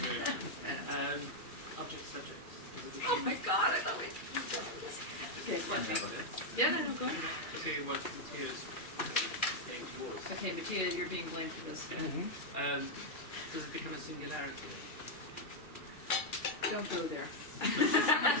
Object subject. Oh my god, I thought we... Okay, yeah, no, go ahead. To what Matthias saying towards. Okay, Mattia, you're being blamed for this. Does it become a singularity? Don't go there.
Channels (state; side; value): late; right; 2.3 ms